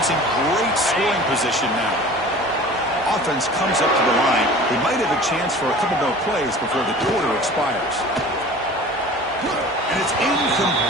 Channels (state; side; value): normal; both; correlation 0.42